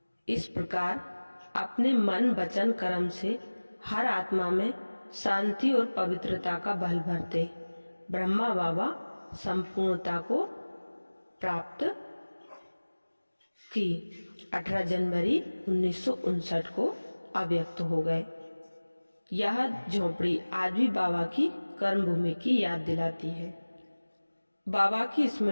इस प्रकार अपने मन, वचन, कर्म से हर आत्मा में शांति और पवित्रता का बल भरते ब्रह्मा बाबा संपूर्णता को प्राप्त की 18 जनवरी 1959 को अव्यक्त हो गए। यह झोपड़ी आज भी बाबा की कर्म भूमि की याद दिलाती है। बाबा की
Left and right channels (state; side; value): inverted; both; correlation -1.00